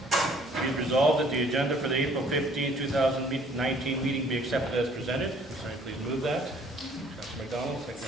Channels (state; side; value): normal; both; correlation 0.57